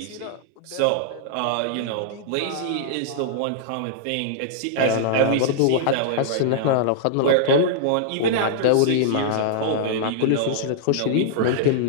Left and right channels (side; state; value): both; different; correlation -0.02